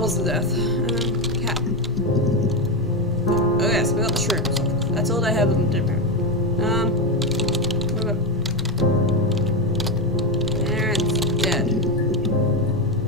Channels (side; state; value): both; normal; correlation 0.11